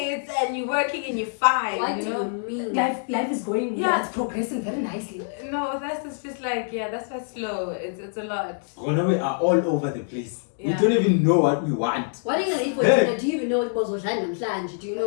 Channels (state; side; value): silent; right; digital silence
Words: and you're working and you're fine? What do you mean? Life is going. Yeah. It's progressing very nicely. No, that's just like that's why it's slow. It's a lot. We are all over the place. We don't even know what we want. What are you gonna eat for dinner? Do you even know what was and flange? Do you